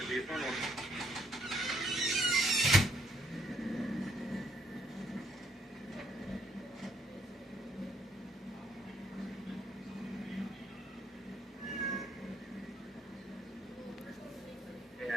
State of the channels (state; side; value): normal; both; correlation 0.71